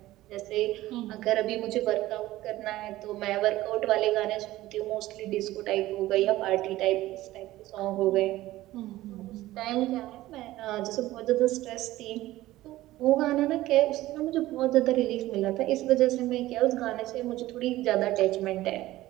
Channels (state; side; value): quieter; left; 16.3 dB